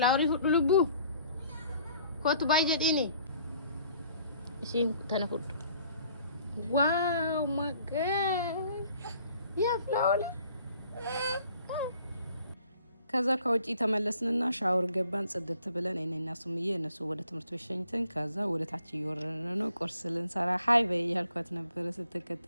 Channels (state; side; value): inverted; both; correlation -0.59